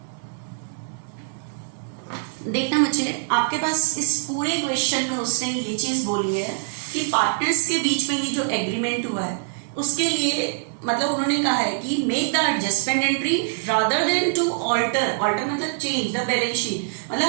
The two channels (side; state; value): left; silent; 63 dB below the other